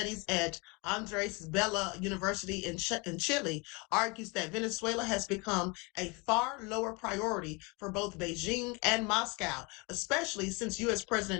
at Andres Bello University in Chile, argues that Venezuela has become a far lower priority for both Beijing and Moscow, especially since U.S.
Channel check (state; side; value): quieter; right; 28.8 dB